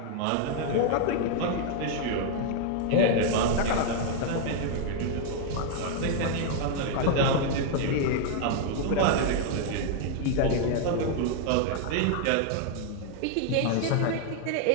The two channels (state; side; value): different; both; correlation 0.00